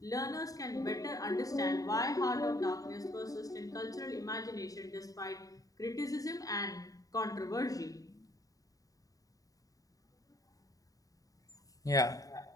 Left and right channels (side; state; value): right; late; 0.17 ms